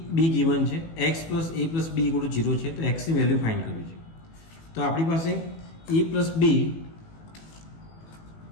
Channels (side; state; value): right; late; 18 ms